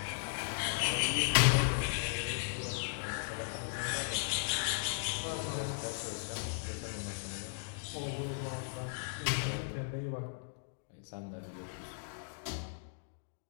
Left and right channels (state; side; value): silent; right; digital silence